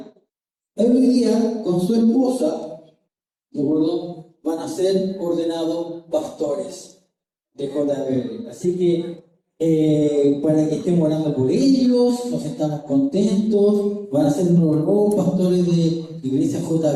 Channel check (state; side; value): identical; both; correlation 1.00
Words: Hoy día, con su esposa, ¿de acuerdo?, van a ser ordenados pastores de JBL. Así que para que estemos orando por ellos, nos estamos contentos. Van a ser los nuevos pastores de Iglesia